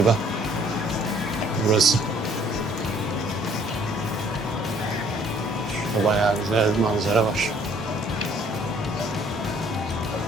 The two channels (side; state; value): both; normal; correlation 0.60